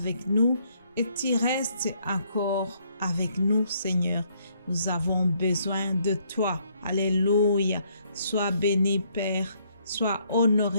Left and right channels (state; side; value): inverted; both; correlation -0.69